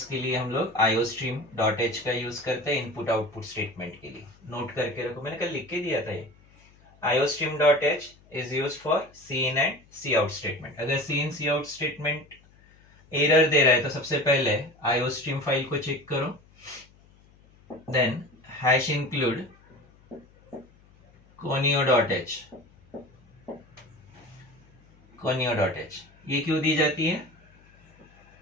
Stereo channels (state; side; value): noise; left; hum, 28 dB below the sound